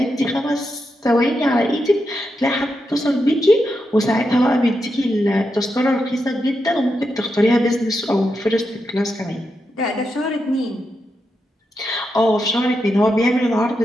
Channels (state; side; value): normal; both; correlation 0.86